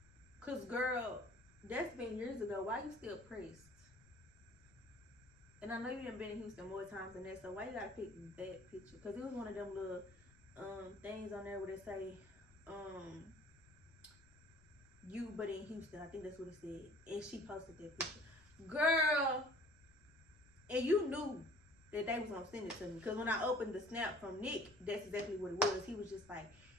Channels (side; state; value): left; noise; rumble, 26 dB below the sound